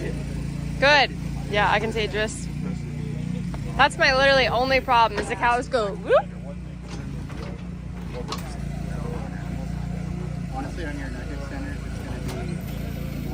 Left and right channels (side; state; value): both; identical; correlation 1.00